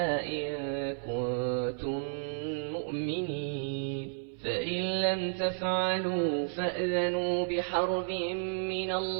إن كنتم مؤمنين فإن لم تفعلوا فأذنوا بحرب من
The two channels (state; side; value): silent; left; 56 dB below the other